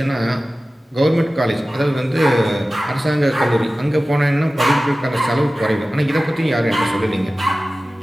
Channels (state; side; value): normal; both; correlation 0.96